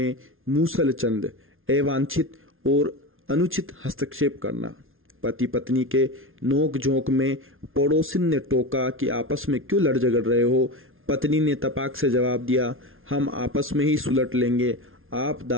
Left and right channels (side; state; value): left; late; 0.60 ms